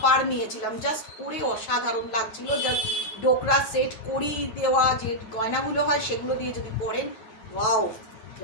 নিয়েছিলাম, জাস্ট পরে অসাধারণ লাগছিল। জাস্ট ডোকরা সেট, কড়ি দেওয়া যে গয়নাগুলো হয় সেগুলো দিয়ে যদি পরেন, ওয়াও,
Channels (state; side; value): late; right; 9.2 ms